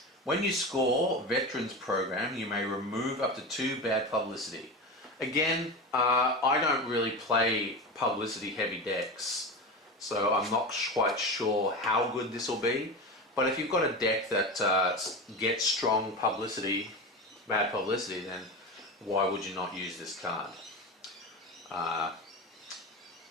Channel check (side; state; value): both; normal; correlation 0.24